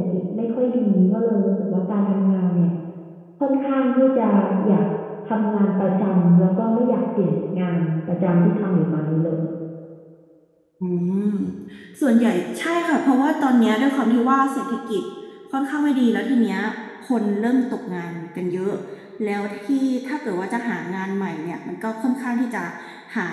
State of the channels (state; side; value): identical; both; correlation 1.00